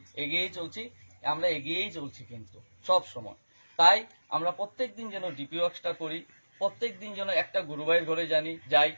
চলছি কিন্তু সব সময়। তাই আমরা প্রত্যেকদিন যেন ডিপি ওয়ার্কসটা করি, প্রত্যেকদিন যেন একটা গুরুভাইয়ের ঘরে যাই।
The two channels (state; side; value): inverted; both; correlation -1.00